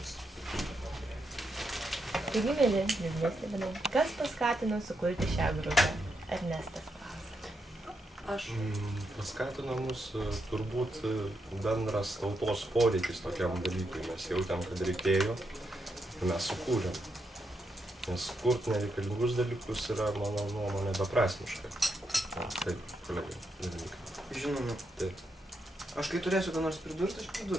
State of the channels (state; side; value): normal; both; correlation 0.82